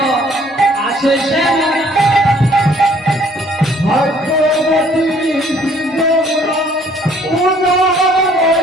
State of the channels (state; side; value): normal; both; correlation 0.60